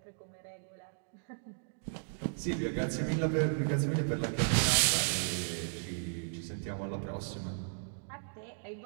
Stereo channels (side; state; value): left; silent; digital silence